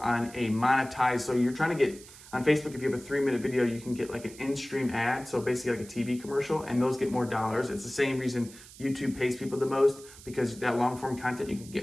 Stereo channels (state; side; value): noise; right; hiss, 19 dB below the sound